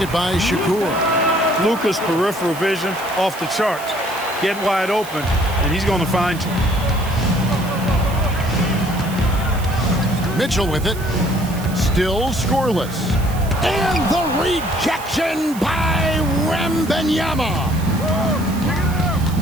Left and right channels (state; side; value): noise; right; hiss, 16 dB below the sound